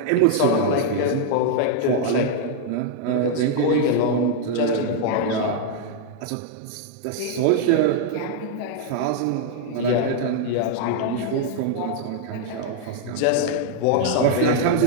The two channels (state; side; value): different; both; correlation 0.00